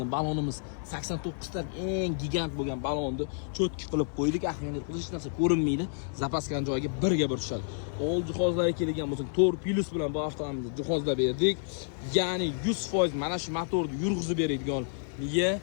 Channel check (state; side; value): silent; right; digital silence